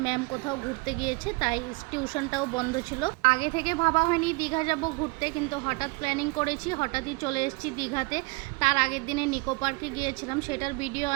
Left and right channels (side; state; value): left; quieter; 27.3 dB